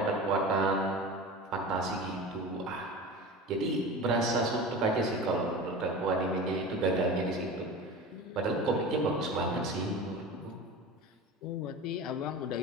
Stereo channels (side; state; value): both; normal; correlation 0.32